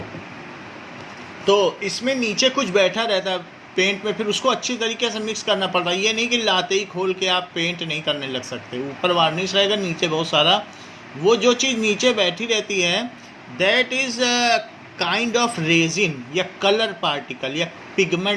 तो इसमें नीचे कुछ बैठा रहता है पेंट में, फिर उसको अच्छी तरीके से मिक्स करना पड़ता है। ये नहीं कि लाते ही खोल के आप पेंट नहीं करने लग सकते। ऊपर वार्निश रहेगा, नीचे बहुत सारा वो जो चीज़ नीचे बैठी रहती है, that is kind of resin या कलर पार्टिकल या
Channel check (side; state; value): both; identical; correlation 1.00